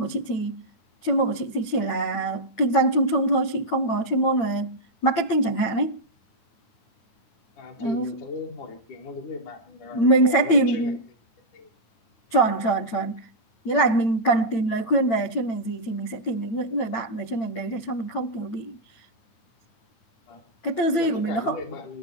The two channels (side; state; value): right; late; 8.9 ms